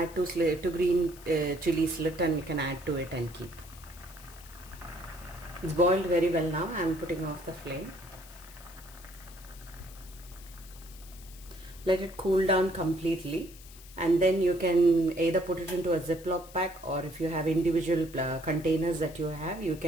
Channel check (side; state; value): left; noise; hiss, 20 dB below the sound